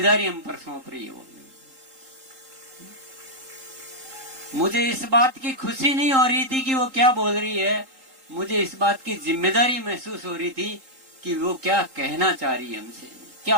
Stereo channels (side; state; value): left; late; 3.8 ms